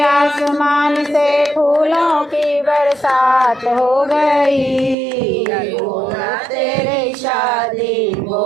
से फूलों की बरसात हो गई। गोरा तेरी शादी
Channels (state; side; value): drops out; left; at 5.0 s